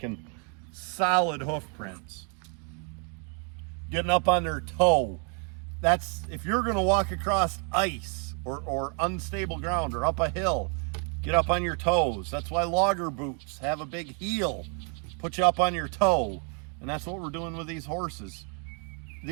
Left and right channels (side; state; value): left; quieter; 38.7 dB